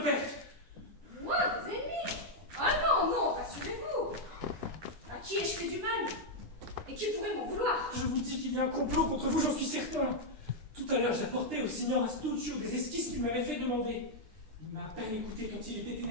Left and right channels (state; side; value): late; left; 9.9 ms